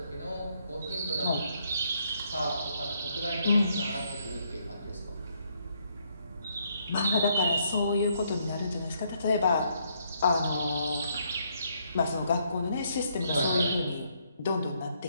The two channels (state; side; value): inverted; both; correlation -0.72